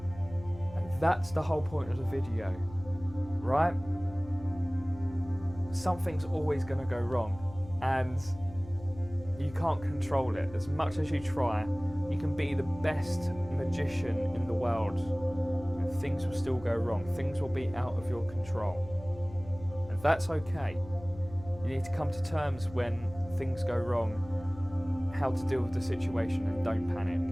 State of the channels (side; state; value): left; noise; hum, 17 dB below the sound